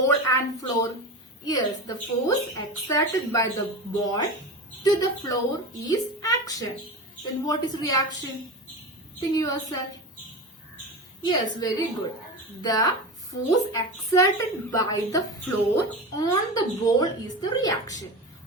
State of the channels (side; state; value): both; normal; correlation 0.26